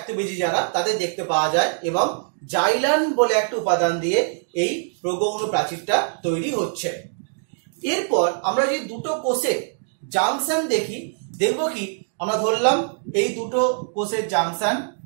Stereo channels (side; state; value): left; silent; 60 dB below the other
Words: যারা তাদের দেখতে পাওয়া যায়, এবং জাইলান বলে একটা উপাদান দিয়ে এই প্রগৌণ প্রাচীরটা তৈরি হচ্ছে। এরপর আমরা যদি দুটো কোষের জাংশন দেখি, দেখবো কি আমরা ধরলাম এই দুটো কোষের জাংশন,